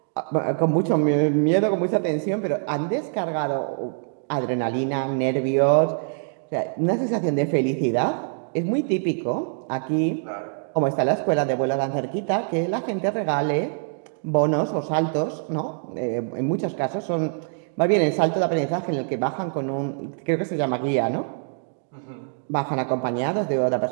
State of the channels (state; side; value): silent; left; 62 dB below the other